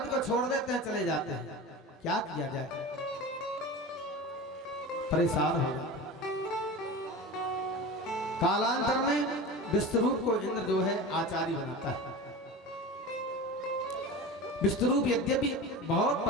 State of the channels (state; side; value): normal; both; correlation 0.30